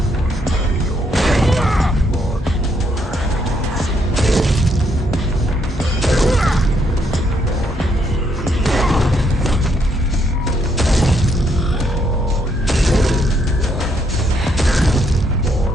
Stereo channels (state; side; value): normal; both; correlation 0.73